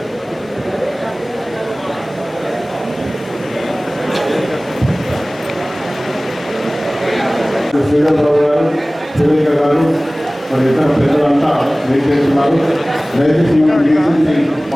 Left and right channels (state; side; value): normal; both; correlation 0.98